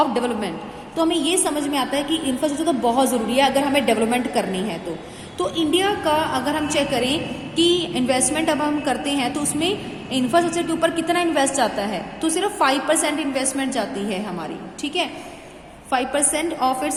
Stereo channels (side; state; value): both; identical; correlation 1.00